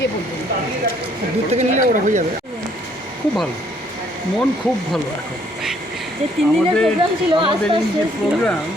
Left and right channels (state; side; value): normal; both; correlation 0.64